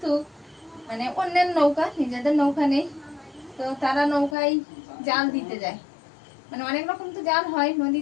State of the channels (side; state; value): right; drops out; at 4.4 s